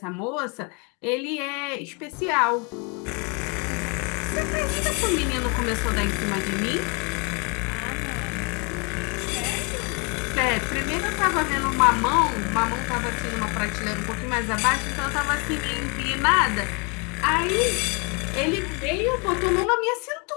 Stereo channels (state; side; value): quieter; right; 33.1 dB